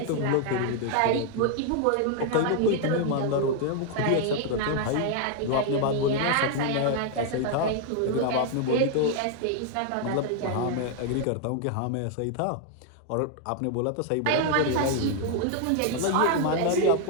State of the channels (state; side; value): different; both; correlation 0.00